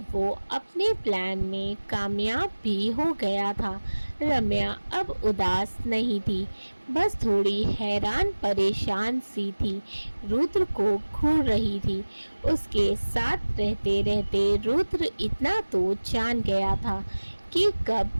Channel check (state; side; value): inverted; both; correlation -1.00